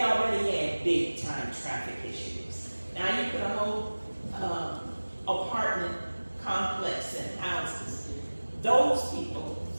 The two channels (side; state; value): both; inverted; correlation -1.00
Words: already had big time traffic issues. Now you put a whole apartment complex and houses. Those people,